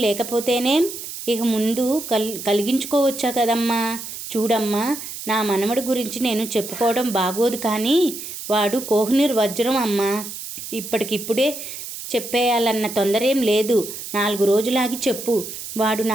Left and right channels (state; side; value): noise; right; hiss, 9 dB below the sound